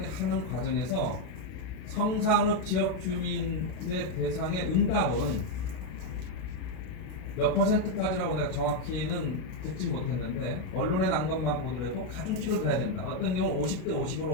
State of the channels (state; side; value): late; right; 32 ms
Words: 하는 과정에서 성산읍 지역 주민의 대상의 응답은 몇 퍼센트까지라고 내가 정확히는 듣지 못했는데, 언론에 난 것만 보더라도 가중치를 둬야 된다. 어떤 경우 50대